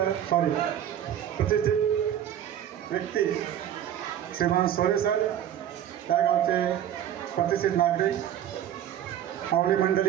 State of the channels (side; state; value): left; quieter; 10.6 dB